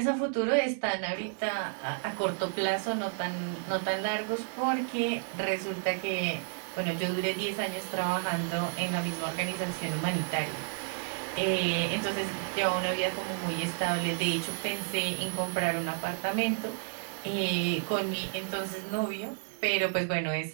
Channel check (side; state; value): left; silent; digital silence